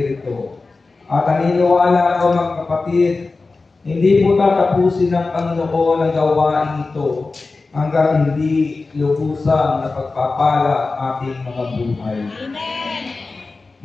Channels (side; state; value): right; quieter; 3.8 dB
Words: At naniniwala ko, mga kapatid, hindi po tatapusin ng Panginoon ang gawain ito hanggang hindi lubusan na pagpapala ating mga buhay. Amen.